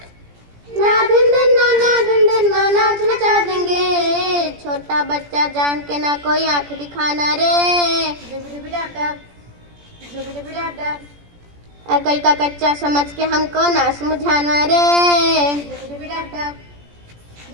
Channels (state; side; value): late; left; 17 ms